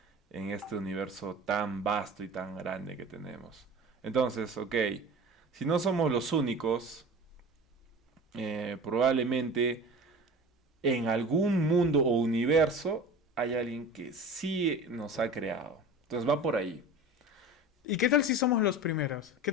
universo tan vasto y tan grande que tenemos. Entonces, ok, si no somos los únicos, probablemente en algún mundo o universo hay alguien que sí nos ha creado. Entonces va por ahí. ¿Y qué tal si somos los primeros? ¿Qué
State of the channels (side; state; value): both; normal; correlation 0.36